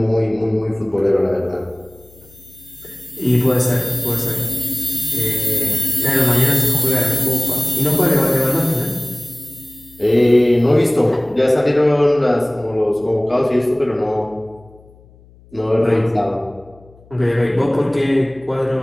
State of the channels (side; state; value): left; noise; hum, 26 dB below the sound